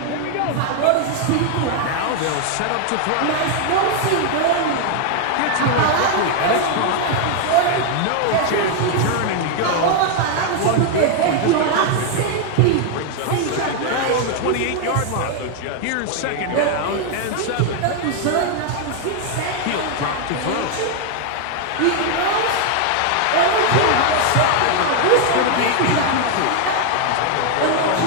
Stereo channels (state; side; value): different; both; correlation 0.00